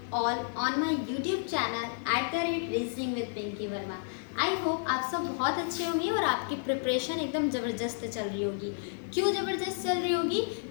all on my YouTube channel @reasoning with Pinky Verma। I hope आप सब बहुत अच्छे होंगे और आपकी प्रिपरेशन एकदम ज़बरदस्त चल रही होगी। क्यों ज़बरदस्त चल रही होगी?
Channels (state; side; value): silent; right; 57 dB below the other